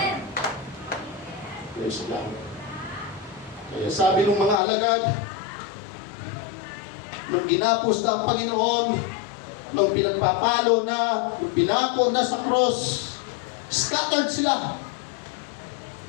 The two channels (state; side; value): drops out; right; at 4.6 s